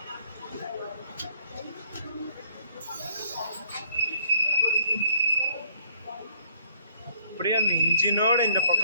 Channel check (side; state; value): both; inverted; correlation -0.63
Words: அப்படியே அந்த இன்ஜினோட இந்த